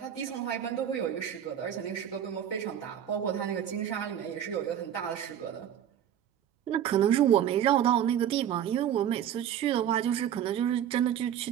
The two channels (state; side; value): quieter; left; 10.0 dB